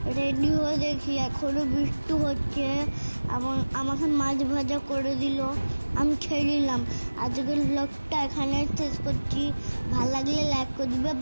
রেডি হয়ে দেখি এখনো বৃষ্টি হচ্ছে। আমাকে মাছ ভাজা করে দিল, আমি খেয়ে নিলাম। আজকের ব্লগটা এখানে শেষ করছি। ভালো লাগলে লাইক করে দিবে।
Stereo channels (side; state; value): both; inverted; correlation -1.00